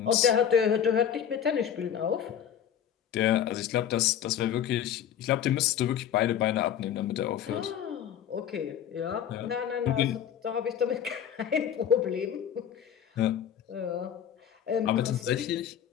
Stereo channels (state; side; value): quieter; right; 9.2 dB